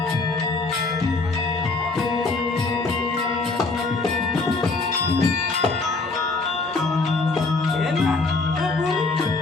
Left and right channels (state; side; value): quieter; right; 3.7 dB